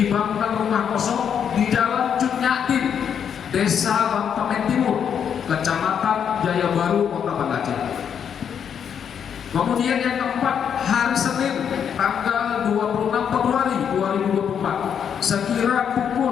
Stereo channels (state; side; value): quieter; right; 8.0 dB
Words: rumah kosong di Jalan Cunyatin, Desa Bantamen Timur, Kecamatan Jaya Baru, Kota Banda Aceh. Kemudian yang keempat, hari Senin tanggal 26 Februari 2024 sekira